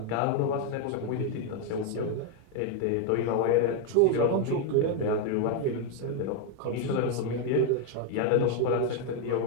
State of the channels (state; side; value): different; both; correlation 0.01